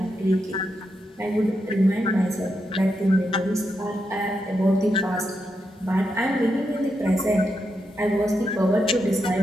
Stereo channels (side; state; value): both; normal; correlation 0.84